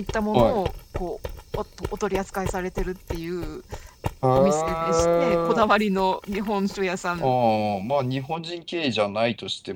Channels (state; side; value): identical; both; correlation 1.00